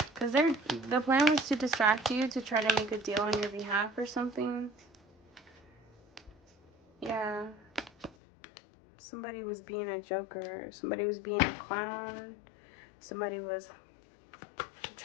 Because the plan was to distract you, to try to make a deal on your behalf or something. Yeah. Somebody was being a joker. Somebody was being a clown. Somebody was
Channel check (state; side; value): drops out; right; at 8.2 s